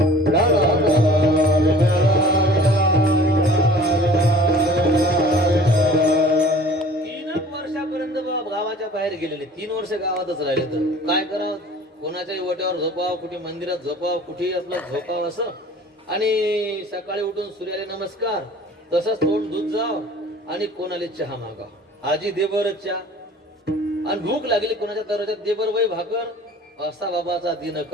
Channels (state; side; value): normal; both; correlation 0.47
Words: गावाच्या बाहेर गेलेले. 3 वर्ष गावातच राहिले. तर काय करावं, कोणाच्याही वट्यावर झोपाव, कुठे मंदिरात झोपाव, कुठेही आपलं झोपाव असं. आणि सकाळी उठून सूर्याला नमस्कार, तसंच तोंड दूध जाव आणि कोणाला चहा मागाव. आजी दे बरं चहा. आणि भूक लागली कोणाच्या दरवाजात दे बरं वय भाकर. असा बाबाचा